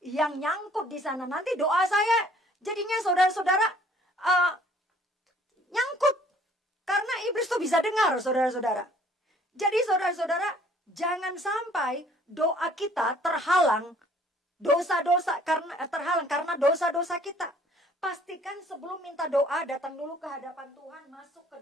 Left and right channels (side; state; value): both; normal; correlation 0.58